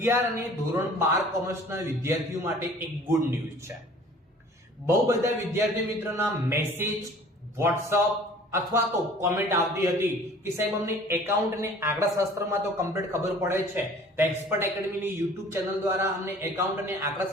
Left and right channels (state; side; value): normal; both; correlation 0.49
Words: અને ધોરણ 12 કોમર્સના વિદ્યાર્થીઓ માટે એક ગુડ ન્યૂઝ છે. બહુ બધા વિદ્યાર્થી મિત્રોના મેસેજ, વોટ્સઅપ અથવા તો કોમેન્ટ આવતી હતી કે સાહેબ અમને એકાઉન્ટ અને આંકડાશાસ્ત્રમાં તો કમ્પ્લીટ ખબર પડે છે, તો એક્સપર્ટ એકેડમીની YouTube ચેનલ દ્વારા અમને એકાઉન્ટ અને